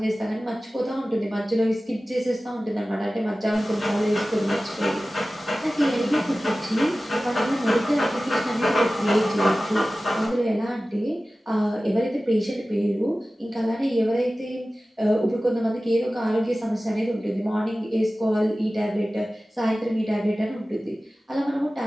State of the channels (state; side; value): normal; both; correlation 0.96